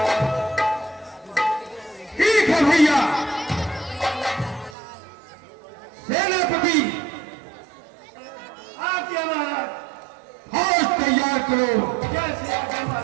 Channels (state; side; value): drops out; left; at 4.8 s